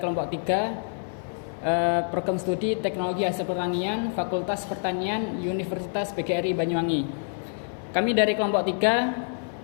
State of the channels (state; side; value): silent; right; 56 dB below the other